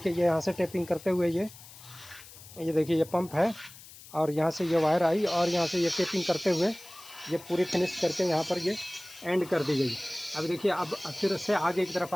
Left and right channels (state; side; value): noise; left; hiss, 19 dB below the sound